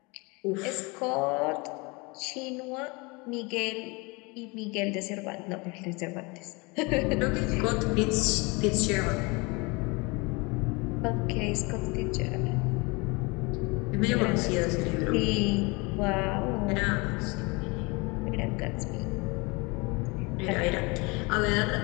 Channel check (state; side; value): quieter; right; 27.4 dB